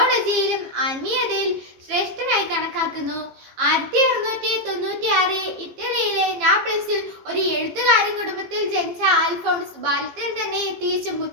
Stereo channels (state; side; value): late; left; 15 ms